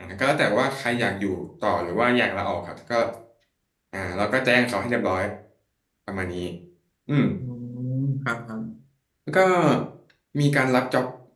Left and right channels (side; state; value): both; identical; correlation 1.00